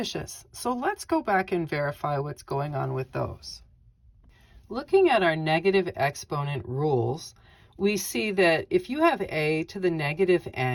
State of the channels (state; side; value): identical; both; correlation 1.00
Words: So let's go back and verify what's going on with those. Looking at our negative exponent rules, we see that if you have a to the negative